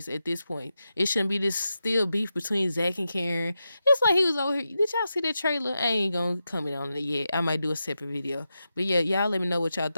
at this point. It shouldn't be this still beef between Zach and Karen. It's like he was over here. Did y'all see that trailer? I ain't gonna comment on it yet. I might do a separate video. But yeah, y'all let me know what y'all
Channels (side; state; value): both; inverted; correlation -0.89